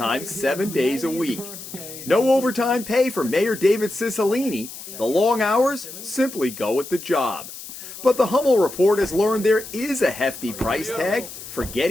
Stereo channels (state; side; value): noise; left; hiss, 13 dB below the sound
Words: 7 days a week. No overtime pay for Mayor David Cicilline. The long hours simply go with the job. But the Hummel report has learned there is a hefty price tag for